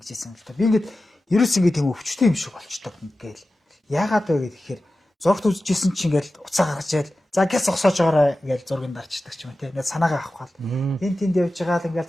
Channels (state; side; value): normal; both; correlation 0.94